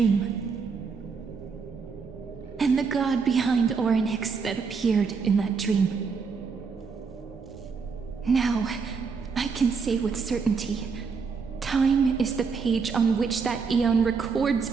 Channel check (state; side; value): quieter; left; 5.3 dB